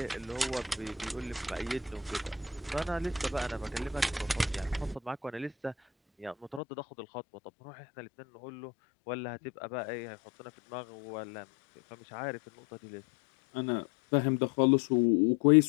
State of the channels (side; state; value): right; drops out; at 6.6 s